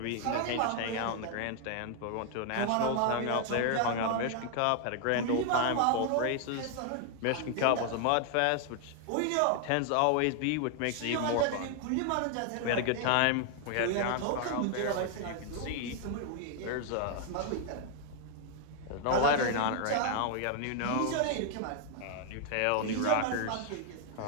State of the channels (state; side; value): different; both; correlation 0.00